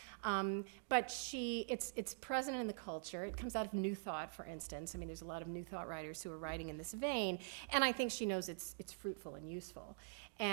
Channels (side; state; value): left; silent; digital silence